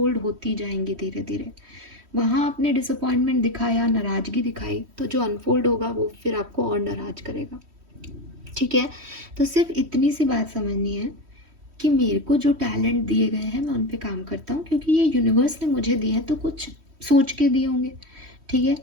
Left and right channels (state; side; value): late; left; 3.1 ms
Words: होती जाएंगी धीरे धीरे। वहाँ आपने डिसअपॉइंटमेंट दिखाया, नाराज़गी दिखाई, तो जो अनफोल्ड होगा वो फिर आपको और नाराज करेगा, ठीक है। तो सिर्फ इतनी सी बात समझनी है कि मेरे को जो टैलेंट दिए गए हैं मैं उन पे काम करता हूँ, क्योंकि ये यूनिवर्स ने मुझे दिए हैं, तो कुछ सोच के दिए होंगे, ठीक है।